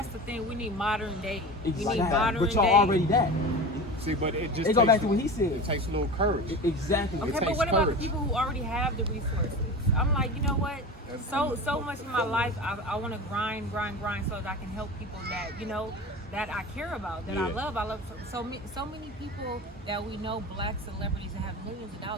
the thing. We need modern day. Exactly. We need modern but y'all day. already that. See, but it just It go back to what he said. It takes a little courage. Exactly. Okay, but what about the people who already have the resources? I'm like, you know what? So much in my life, I want to grind so that I can help people that, that I care about, that I love. I love so many people that we know, black celebrities that have millions of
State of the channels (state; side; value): normal; both; correlation 0.31